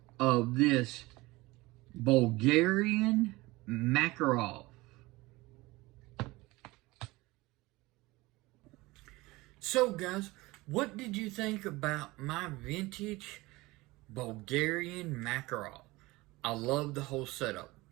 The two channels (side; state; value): left; quieter; 21.1 dB